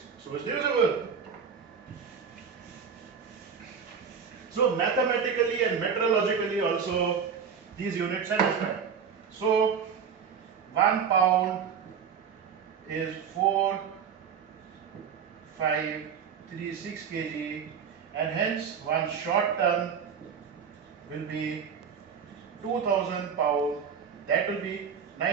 So it's divisible. So mathematically and metrologically also these units satisfy. So 1 pound is 4,536 kg and hence 1 short ton will be 2000 pound, that will be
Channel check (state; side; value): quieter; left; 6.7 dB